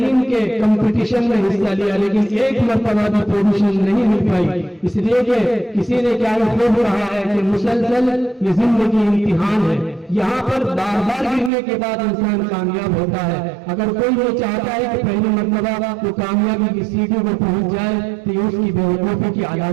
کے کمپٹیشن میں حصہ لیا، لیکن 1 مرتبہ بھی پوزیشن نہیں مل پائی، اس لیے کہ کسی نے کیا خوب رہا ہے کہ مسلسل یہ زندگی امتحان ہے، یہاں پر بار بار گرنے کے بعد انسان کامیاب ہوتا ہے۔ اگر کوئی یہ چاہتا ہے کہ پہلی مرتبہ وہ کامیابی کی سیڑھی پر پہنچ جائے تو یہ اس کی بے وقوفی کی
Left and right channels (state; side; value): drops out; left; at 11.5 s